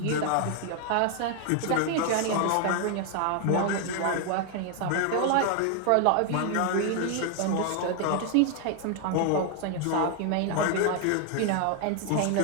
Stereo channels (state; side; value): different; both; correlation 0.00